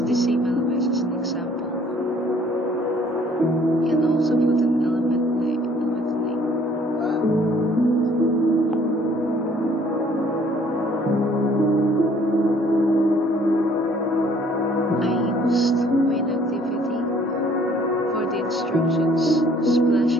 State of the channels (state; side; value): normal; both; correlation 0.59